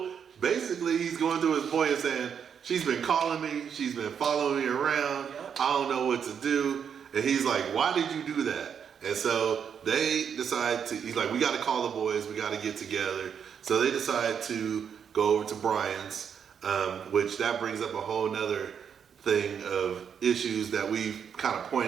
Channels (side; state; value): left; quieter; 7.5 dB